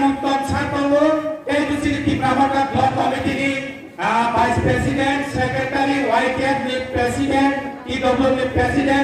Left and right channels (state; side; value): identical; both; correlation 1.00